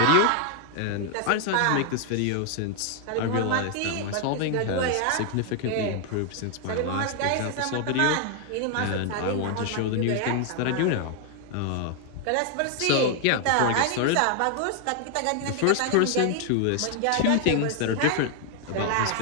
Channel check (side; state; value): both; different; correlation 0.00